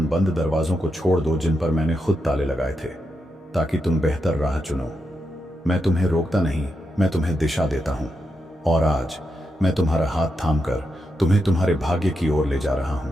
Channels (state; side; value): normal; both; correlation 0.85